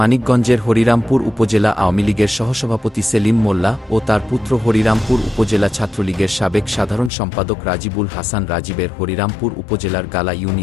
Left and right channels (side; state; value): right; drops out; at 7.1 s